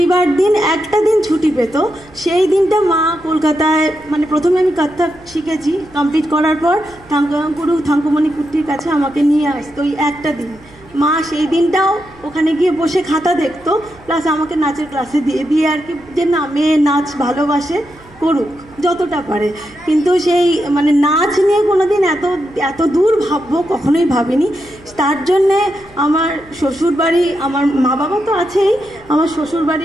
দিন একটা দিন ছুটি পেত, সেই দিনটা মা কলকাতায় মানে প্রথমে আমি কত্থক শিখেছি, কমপ্লিট করার পর গুরু থাঙ্কুমণি কুট্টির কাছে আমাকে নিয়ে আসতো ওই একটা দিন। মা সেই দিনটাও ওখানে গিয়ে বসে খাতা দেখতো, প্লাস আমাকে নাচের ক্লাসে দিয়ে আর কি যে না মেয়ে নাচ ভালোবাসে, করুক যতটা পারে। কিন্তু সেই মানে নাচ নিয়ে কোনোদিন এত দূর ভাববো কখনোই ভাবিনি। তার জন্যে আমার শ্বশুরবাড়ি, আমার মা বাবা তো আছেই, আমার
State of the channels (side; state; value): right; noise; hum, 25 dB below the sound